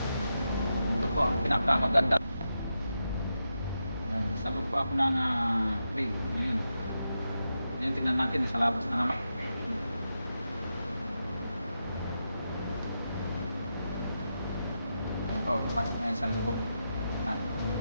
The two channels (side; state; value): both; inverted; correlation -0.87